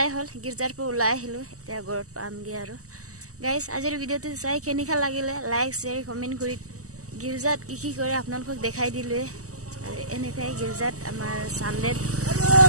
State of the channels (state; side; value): late; left; 0.66 ms